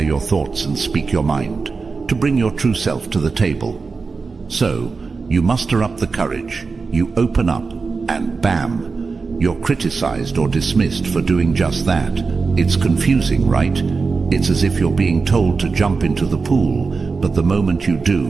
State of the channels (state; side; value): quieter; left; 4.5 dB